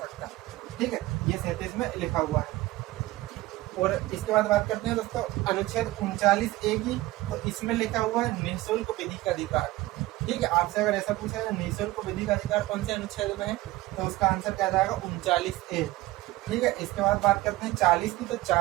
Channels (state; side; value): quieter; left; 18.2 dB